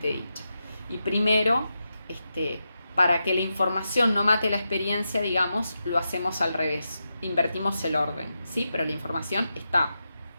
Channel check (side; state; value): both; inverted; correlation -0.88